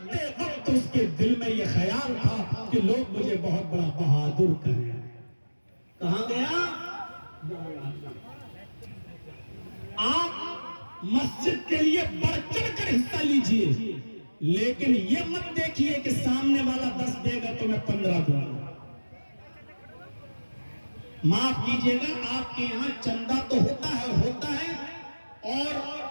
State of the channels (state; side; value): inverted; both; correlation -1.00